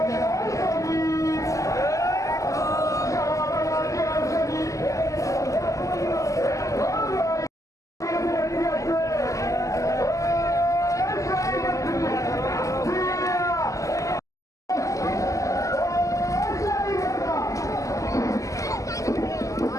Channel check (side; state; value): right; late; 0.16 ms